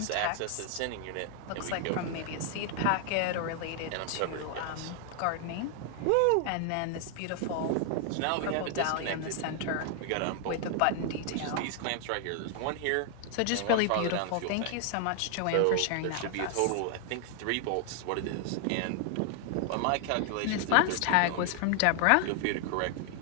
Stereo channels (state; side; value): different; both; correlation 0.00